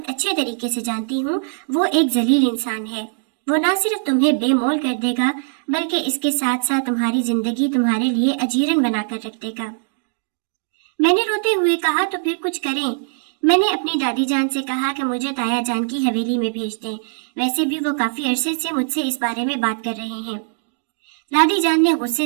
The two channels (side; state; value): left; silent; digital silence